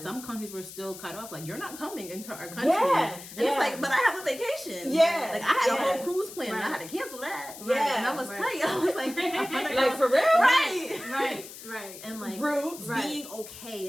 some countries were still cut off. Like, you're not coming into our country. And it's like, but I have a vacation. Like, I had a whole cruise plan. And I had to cancel that. And I was tight. I was like, like for real? Right. And like being okay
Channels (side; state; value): left; noise; hiss, 14 dB below the sound